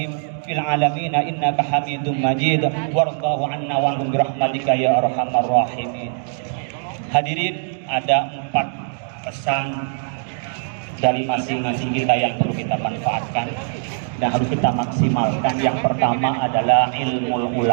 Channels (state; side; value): silent; left; digital silence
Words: fil alamin innaka Hamidum Majid. Warḍahu 'anna wa 'anhum bi rahmatika ya arhamar rahimin. Hadirin, ada 4 pesan dari masing-masing kita yang perlu kita manfaatkan dan harus kita maksimalkan. Yang pertama adalah ilmu